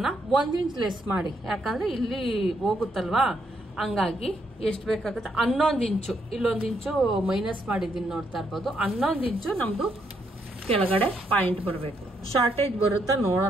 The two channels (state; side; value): normal; both; correlation 0.76